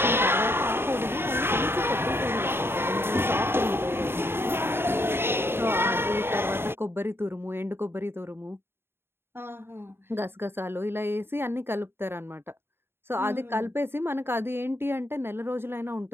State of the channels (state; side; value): late; left; 0.11 ms